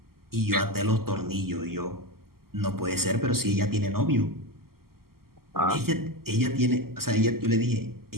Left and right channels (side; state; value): left; late; 0.93 ms